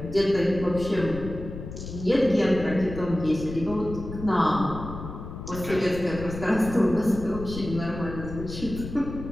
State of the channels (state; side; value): noise; left; rumble, 10 dB below the sound